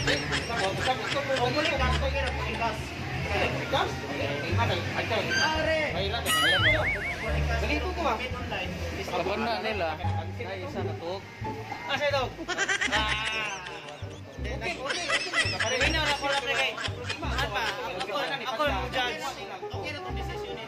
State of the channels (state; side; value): identical; both; correlation 1.00